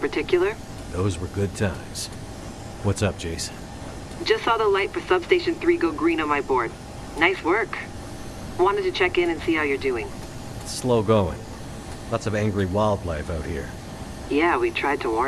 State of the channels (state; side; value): identical; both; correlation 1.00